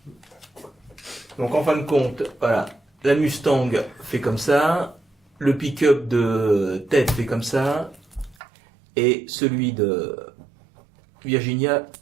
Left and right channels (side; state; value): left; drops out; at 8.3 s